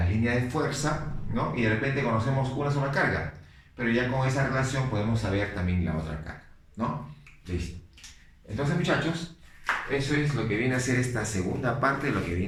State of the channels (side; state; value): both; identical; correlation 1.00